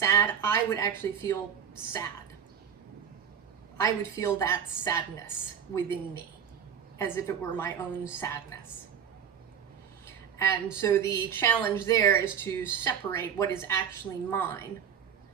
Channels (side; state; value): left; quieter; 7.8 dB